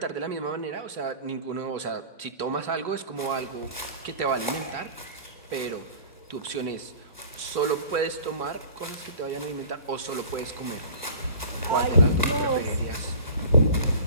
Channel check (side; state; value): both; inverted; correlation -0.43